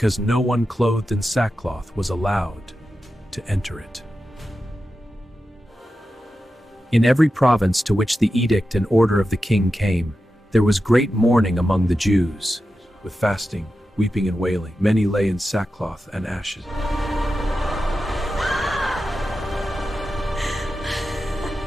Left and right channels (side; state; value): both; normal; correlation 0.91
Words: no one clothed in sackcloth was allowed to enter it. In every province to which the edict and order of the king came, there was great mourning among the Jews. With fasting, weeping and wailing, many lay in sackcloth and ashes.